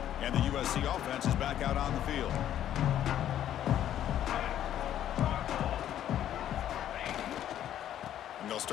The offense is back out on the field.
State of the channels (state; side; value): quieter; right; 11.1 dB